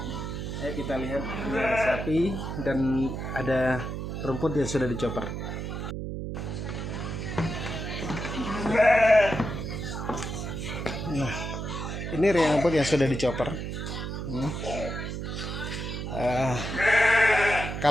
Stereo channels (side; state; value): right; noise; hum, 5 dB below the sound